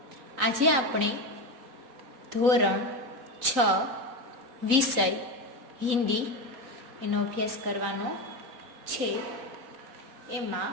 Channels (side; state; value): left; late; 3.9 ms